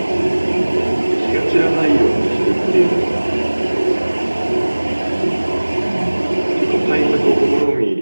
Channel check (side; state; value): both; inverted; correlation -1.00